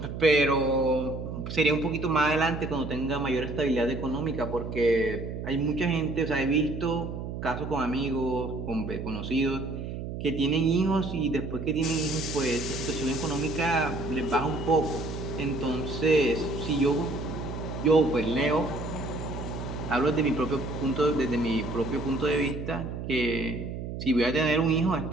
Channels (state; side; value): noise; right; hum, 6 dB below the sound